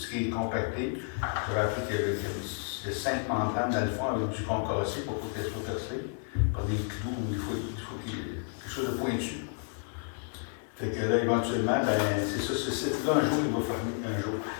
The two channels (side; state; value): right; silent; 57 dB below the other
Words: qui est compacté. J'avais appris qu'il y a 5 membranes dans le fond avec du concassé pour qu'elle soit percée par des clous ou il faut qu'il y ait quelque chose de pointu. Fait que là, éventuellement, ben, c'est ça, ce site-là, un jour, il va fermer.